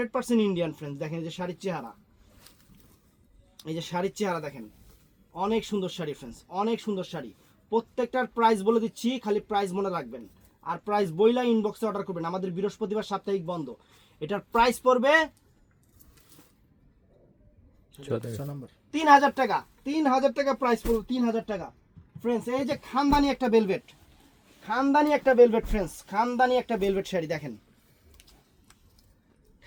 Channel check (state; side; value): identical; both; correlation 1.00